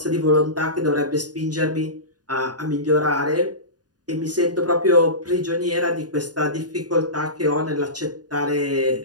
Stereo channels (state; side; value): late; left; 0.69 ms